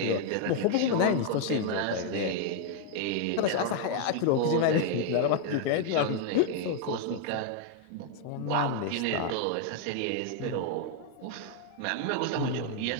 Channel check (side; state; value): both; different; correlation 0.00